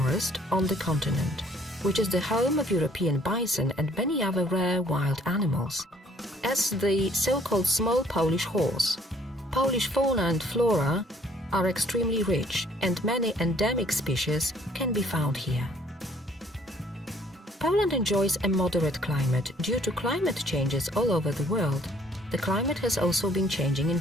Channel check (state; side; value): normal; both; correlation 0.60